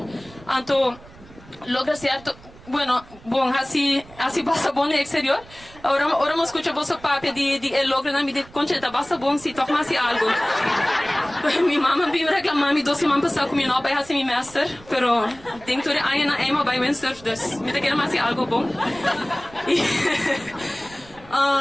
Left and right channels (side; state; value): right; noise; rumble, 22 dB below the sound